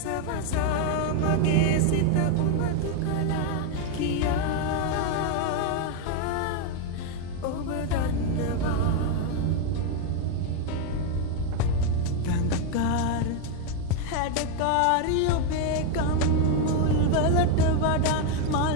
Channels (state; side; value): different; both; correlation 0.01